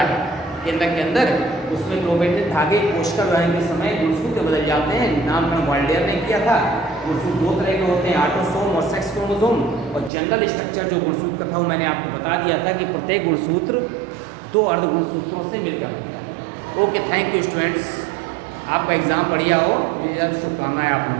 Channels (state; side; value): drops out; left; at 10.1 s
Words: केंद्रक के अंदर, उसमें क्रोमेटिन धागे कोशिका विभाजन के समय गुणसूत्र बदल जाते हैं। नामकरण वाल्डेयर ने किया था। गुणसूत्र 2 तरह के होते हैं, ऑटोसोम और सेक्स क्रोमोसोम। और जनरल स्ट्रक्चर जो गुणसूत्र का था वो मैंने आपको बता दिया था कि प्रत्येक गुणसूत्र 2 अर्ध गुणसूत्रों से मिलकर बनता है। ओके, थैंक यू स्टूडेंट्स, आपका एग्ज़ाम बढ़िया हो, मुझे शुभकामनाएं आप